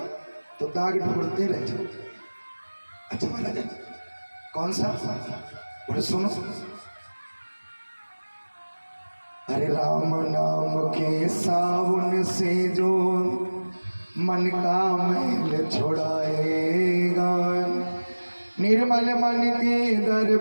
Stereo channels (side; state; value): both; inverted; correlation -1.00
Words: तो दाग ढूंढते रह जाओ। अच्छा महाराज कौन सा? बोले सुनो। अरे राम नाम के साबुन से जो मन का मैल छुड़ाएगा, निर्मल मन के